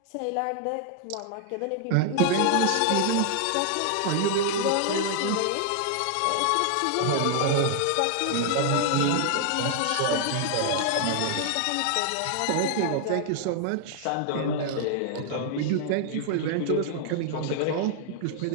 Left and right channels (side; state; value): both; different; correlation 0.00